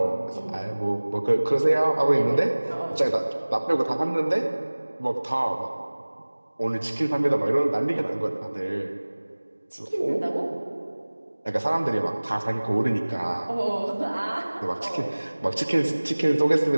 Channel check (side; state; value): both; inverted; correlation -1.00